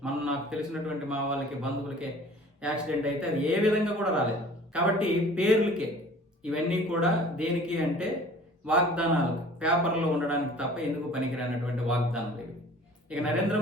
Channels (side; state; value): both; normal; correlation 0.47